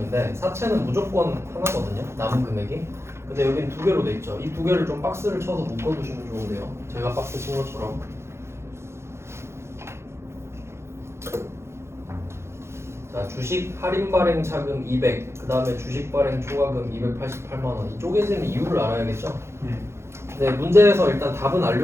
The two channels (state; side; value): late; left; 0.13 ms